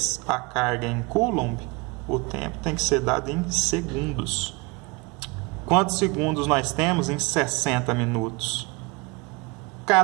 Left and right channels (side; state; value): left; quieter; 26.8 dB